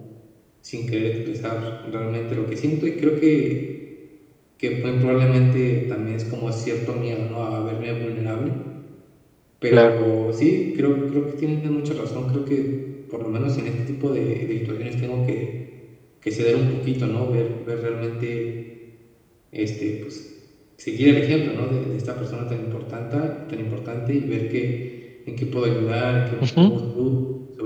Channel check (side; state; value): both; identical; correlation 1.00